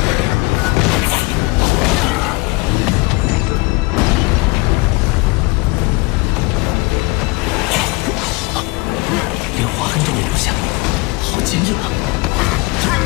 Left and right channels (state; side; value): quieter; right; 24.9 dB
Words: 连划痕都没留下，好坚硬啊！